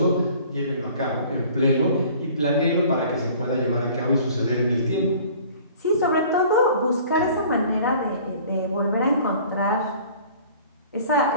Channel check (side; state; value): both; inverted; correlation -0.49